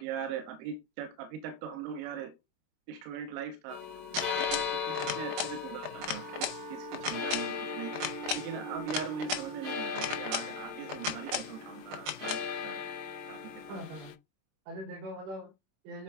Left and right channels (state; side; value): late; left; 26 ms